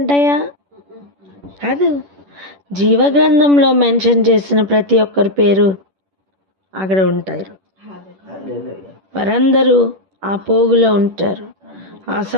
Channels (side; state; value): left; late; 10 ms